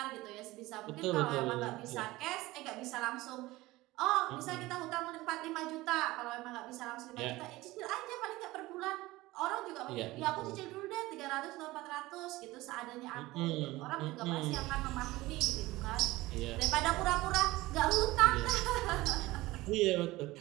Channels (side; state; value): left; quieter; 19.1 dB